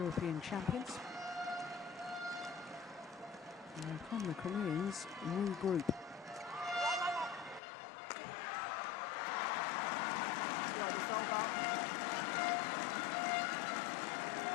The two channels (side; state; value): right; drops out; at 7.6 s